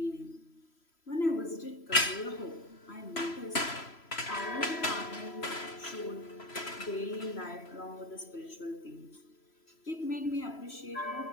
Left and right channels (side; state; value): right; late; 3.0 ms